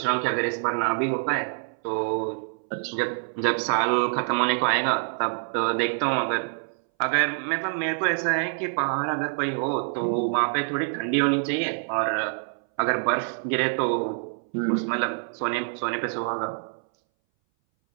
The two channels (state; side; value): silent; left; 60 dB below the other